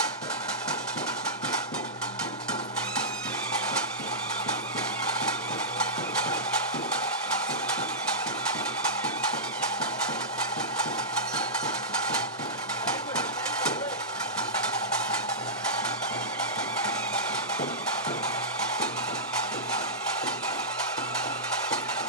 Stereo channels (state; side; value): normal; both; correlation -0.15